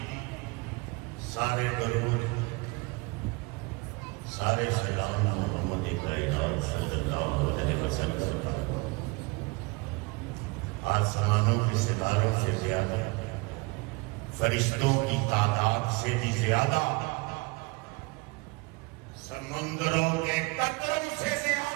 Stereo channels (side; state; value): left; quieter; 26.5 dB